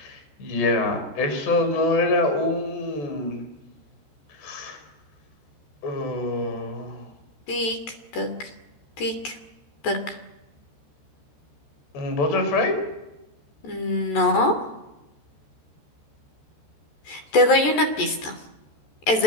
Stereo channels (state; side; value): late; right; 14 ms